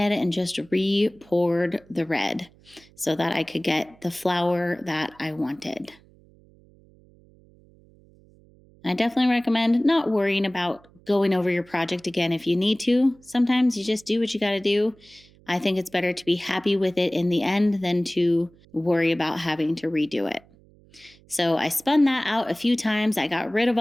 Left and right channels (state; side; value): noise; right; hum, 28 dB below the sound